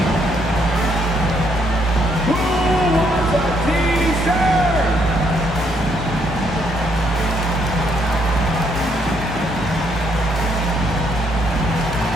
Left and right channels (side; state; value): both; normal; correlation 0.71